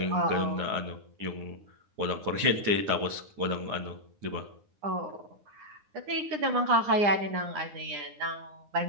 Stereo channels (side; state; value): left; late; 9.8 ms